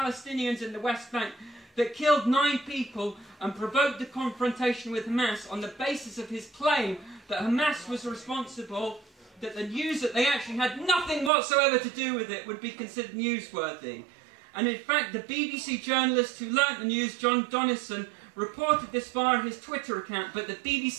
in the West Bank that killed 9 people and provoked the confrontation with Hamas on the basis of his claim that Hamas was responsible, that the news that they actually had nothing whatsoever to do with it would be considered newsworthy. And in fact, the BBC journalist who learnt the news, John Donison, reported this via his Twitter account, but the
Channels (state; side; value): drops out; left; at 11.3 s